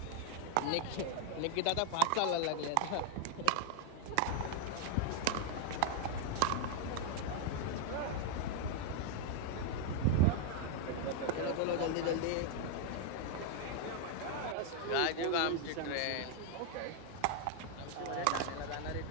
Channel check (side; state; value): both; different; correlation 0.00